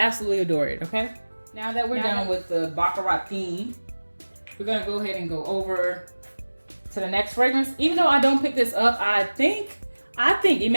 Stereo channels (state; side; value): inverted; both; correlation -1.00